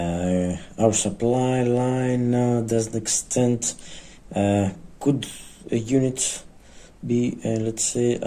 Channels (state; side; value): identical; both; correlation 1.00